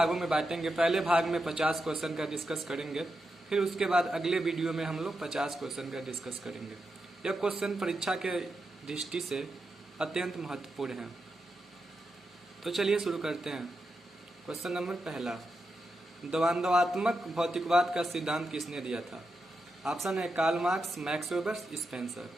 में बांटेंगे। पहले भाग में 50 क्वेश्चन का डिस्कस करेंगे, फिर उसके बाद अगले वीडियो में हम लोग 50 क्वेश्चन का डिस्कस करेंगे। यह क्वेश्चन परीक्षा के दृष्टि से अत्यंत महत्वपूर्ण है। तो चलिए शुरू करते हैं। क्वेश्चन नंबर पहला, द्वंद्वात्मक भौतिकवाद का सिद्धांत किसने दिया था? ऑप्शन है Karl Marx, Max Weber, Spencer.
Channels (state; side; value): normal; both; correlation 0.87